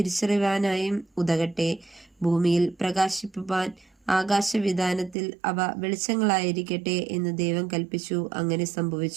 ഉതകട്ടെ. ഭൂമിയിൽ പ്രകാശിപ്പാൻ ആകാശവിതാനത്തിൽ അവ വെളിച്ചങ്ങളായിരിക്കട്ടെ എന്ന് ദൈവം കൽപ്പിച്ചു. അങ്ങനെ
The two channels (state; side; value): drops out; left; at 5.2 s